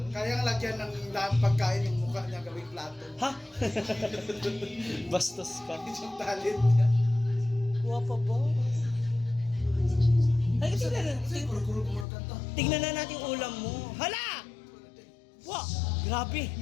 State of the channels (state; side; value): drops out; right; at 12.1 s